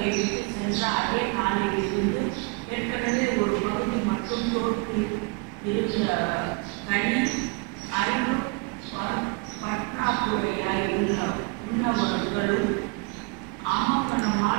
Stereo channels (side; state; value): left; quieter; 29.8 dB